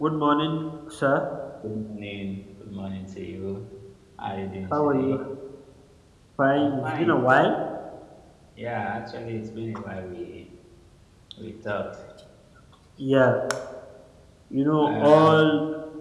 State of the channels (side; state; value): both; identical; correlation 1.00